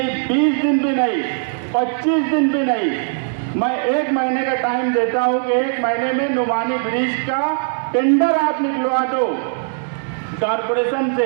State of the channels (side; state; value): left; silent; digital silence